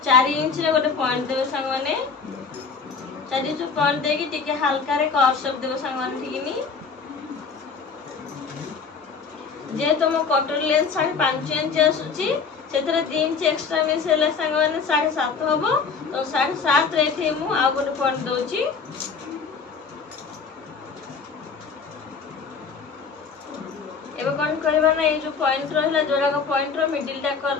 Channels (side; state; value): right; quieter; 5.4 dB